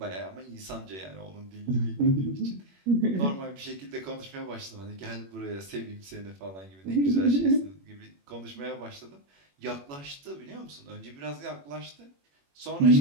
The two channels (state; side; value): late; left; 21 ms